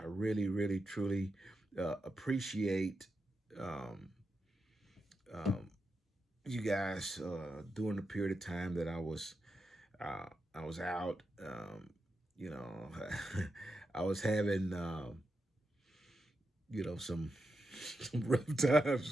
really, really, truly appreciate um, um, you guys during the period of time that I was out. You know, I was having some some rough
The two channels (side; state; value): both; normal; correlation 0.87